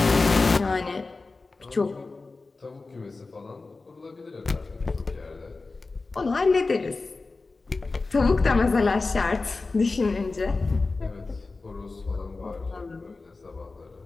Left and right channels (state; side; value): quieter; right; 3.7 dB